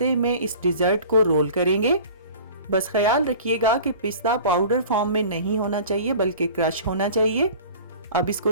में इस डिजर्ट को रोल करेंगे। बस ख्याल रखिएगा कि पिस्ता पाउडर फॉर्म में नहीं होना चाहिए बल्कि क्रश होना चाहिए। अब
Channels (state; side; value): inverted; both; correlation -0.42